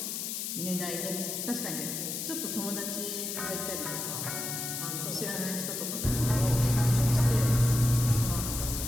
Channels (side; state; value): left; noise; hiss, 4 dB below the sound